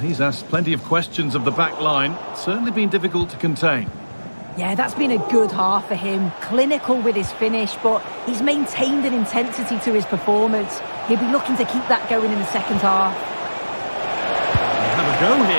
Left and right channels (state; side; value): inverted; both; correlation -1.00